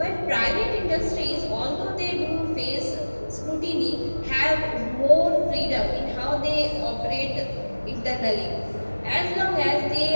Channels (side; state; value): both; inverted; correlation -1.00